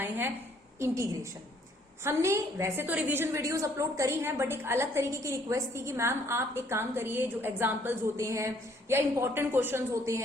हैं, इंटीग्रेशन। हमने वैसे तो रिवीजन वीडियोस अपलोड करी हैं, बट एक अलग तरीके की रिक्वेस्ट थी कि मैम आप एक काम करिए, जो एग्जांपल्स होते हैं या इंपॉर्टेंट क्वेश्चंस होते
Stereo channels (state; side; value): normal; both; correlation 0.64